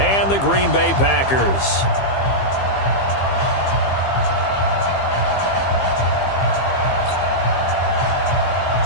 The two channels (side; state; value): right; late; 15 ms